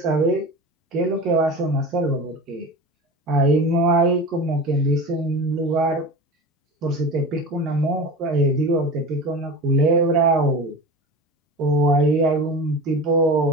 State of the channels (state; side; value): normal; both; correlation 0.31